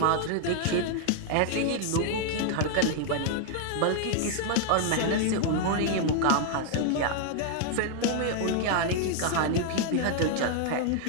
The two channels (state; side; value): different; both; correlation 0.00